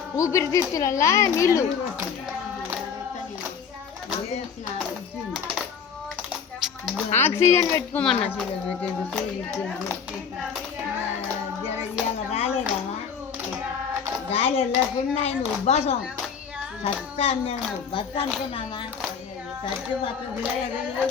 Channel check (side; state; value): right; quieter; 6.7 dB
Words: ఊపిరితిత్తులల్లా నీళ్ళు ఆక్సిజన్ పెట్టుకోమన్నా. రాలేదా గాలి వెళ్ళకుండా ఆయన ఉబ్బాసం సత్తా మేము బతు అనుకున్నామా సత్తి పక్క